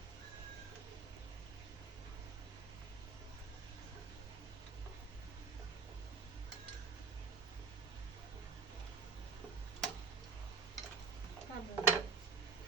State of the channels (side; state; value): left; quieter; 5.2 dB